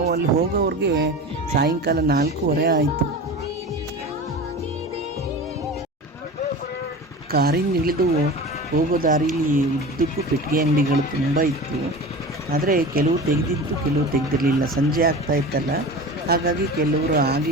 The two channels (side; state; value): both; normal; correlation 0.32